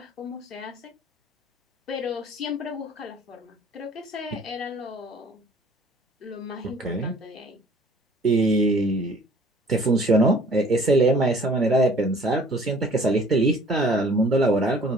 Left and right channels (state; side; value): normal; both; correlation 0.54